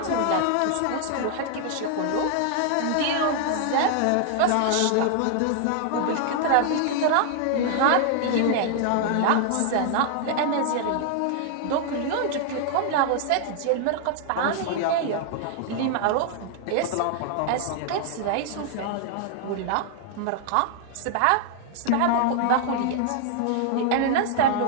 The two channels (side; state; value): both; different; correlation 0.00